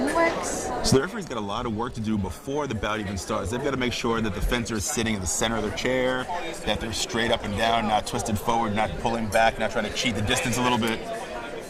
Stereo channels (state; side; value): identical; both; correlation 1.00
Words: works. So the referee's got a lot of work to do before the bout even starts. They've got to make sure that the fencer is sitting in the center of their chair, that they're straight up and down, not twisted forward, not pulling back, not trying to cheat the distance a little bit.